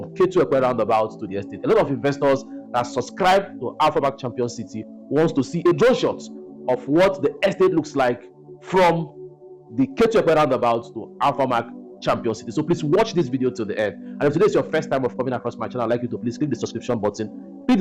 Ketu-Epe Roundabout to the estate. A lot of investors that subscribe to Alphamark Champion City wants to see a drone shot of what the estate looks like from the Ketu-Epe Roundabout to Alphamark Champion City. So please watch this video till the end. And if today is your first time of coming across my channel, I'd like you to please click the subscription button, click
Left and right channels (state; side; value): identical; both; correlation 1.00